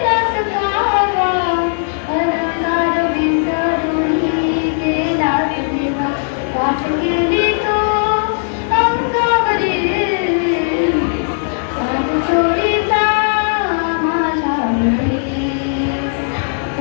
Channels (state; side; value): silent; right; digital silence